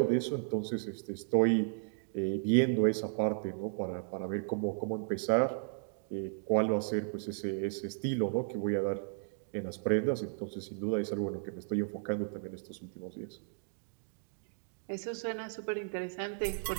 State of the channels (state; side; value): silent; left; digital silence